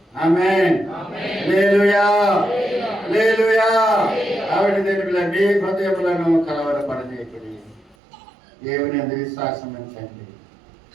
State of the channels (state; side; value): drops out; left; at 8.0 s